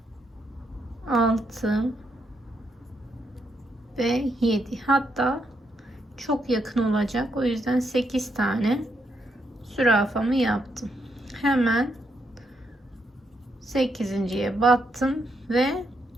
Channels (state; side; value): normal; both; correlation 0.79